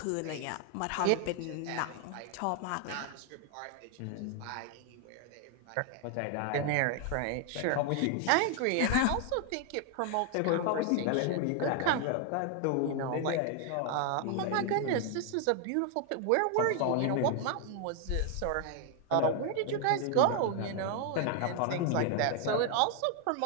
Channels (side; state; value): both; different; correlation 0.01